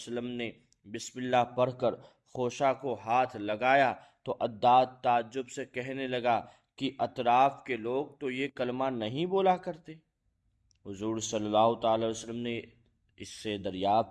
نے بسم اللہ پڑھ کر خوشہ کو ہاتھ لگایا تو عداس تعجب سے کہنے لگا کہ اطراف کے لوگ تو یہ کلمہ نہیں بولا کرتے۔ حضور صلی اللہ تعالی علیہ وسلم نے اس سے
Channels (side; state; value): both; identical; correlation 1.00